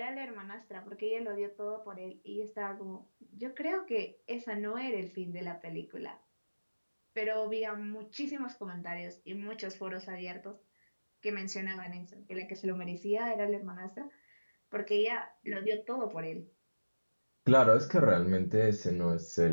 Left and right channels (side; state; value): both; inverted; correlation -1.00